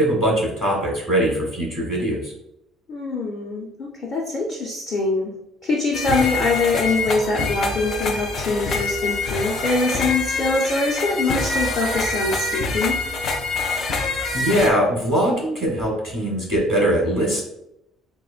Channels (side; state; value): both; normal; correlation 0.55